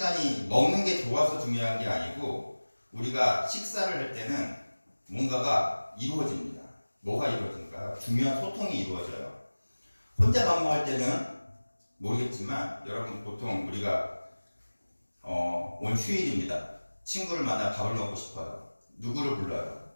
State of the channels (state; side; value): inverted; both; correlation -1.00